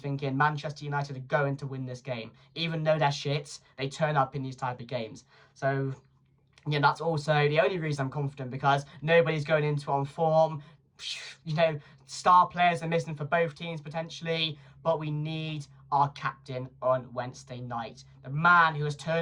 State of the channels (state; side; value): identical; both; correlation 1.00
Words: Manchester United are going to win this game. Even though they're shits, they turn up in these type of games. So, yeah, that's also the only reason I'm confident because nobody's going into it on form. You know, star players are missing for both teams potentially. But we need our captain on Wednesday night. The man who has